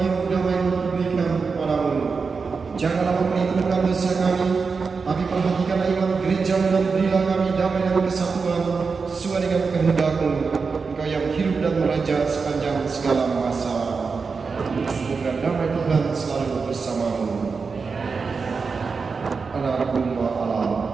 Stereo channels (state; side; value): quieter; left; 4.9 dB